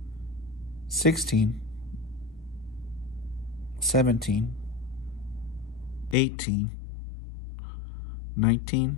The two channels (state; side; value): drops out; right; at 6.2 s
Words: 16, 17, 18,